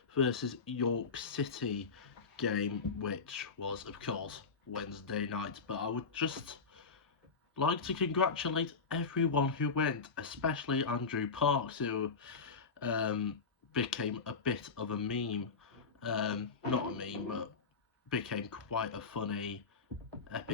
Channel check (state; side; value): quieter; right; 4.9 dB